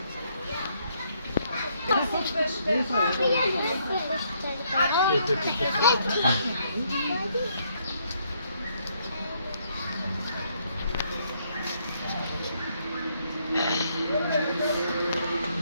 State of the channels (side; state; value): both; inverted; correlation -0.71